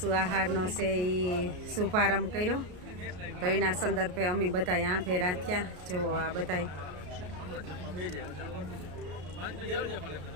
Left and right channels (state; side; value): late; left; 33 ms